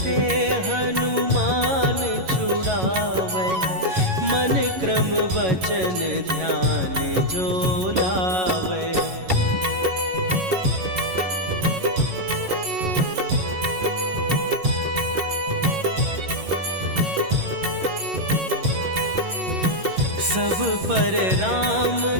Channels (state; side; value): late; left; 11 ms